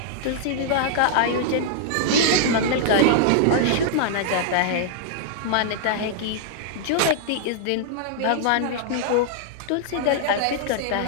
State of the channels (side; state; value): both; different; correlation -0.01